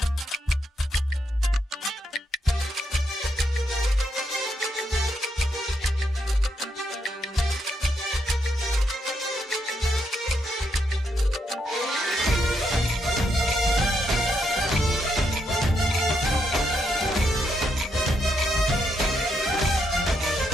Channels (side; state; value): both; normal; correlation 0.79